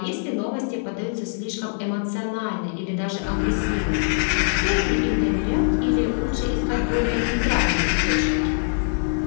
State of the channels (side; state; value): right; silent; 63 dB below the other